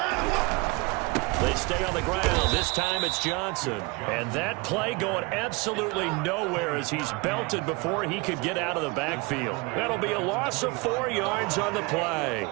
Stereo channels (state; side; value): quieter; left; 26.6 dB